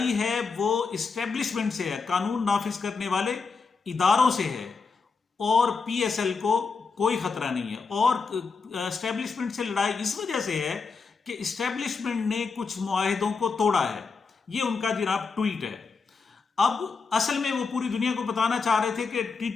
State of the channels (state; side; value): quieter; right; 4.8 dB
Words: है वो इस्टेब्लिशमेंट से है, कानून नाफिज करने वाले इदारों से है और पीएसएल को कोई खतरा नहीं है। और इस्टेब्लिशमेंट से लड़ाई इस वजह से है कि इस्टेब्लिशमेंट ने कुछ मुआहिदों को तोड़ा है। ये उनका जनाब ट्वीट है। अब असल में वो पूरी दुनिया को बताना चाह रहे थे कि